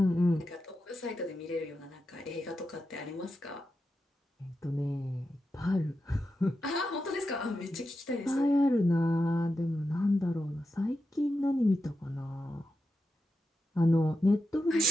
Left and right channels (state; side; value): normal; both; correlation 0.88